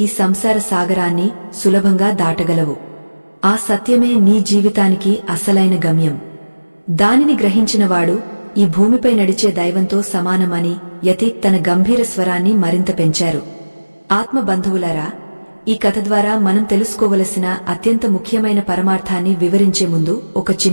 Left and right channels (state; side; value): inverted; both; correlation -1.00